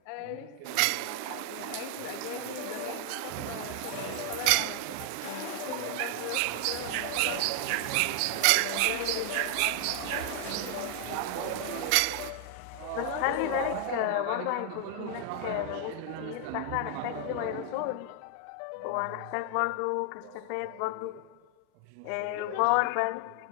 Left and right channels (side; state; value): both; different; correlation 0.00